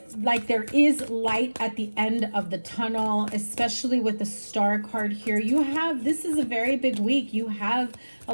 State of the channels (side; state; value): both; inverted; correlation -1.00